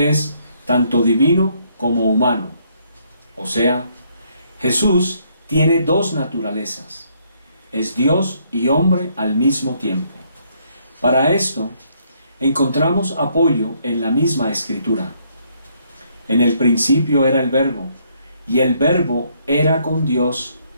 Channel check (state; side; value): inverted; both; correlation -0.70